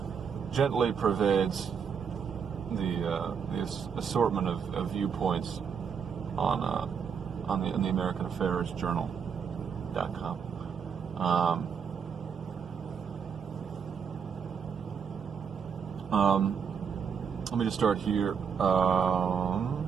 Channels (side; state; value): left; quieter; 6.8 dB